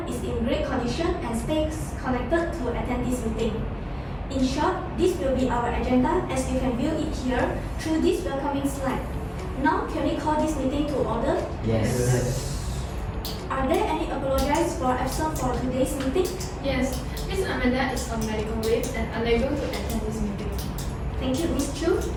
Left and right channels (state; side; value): identical; both; correlation 1.00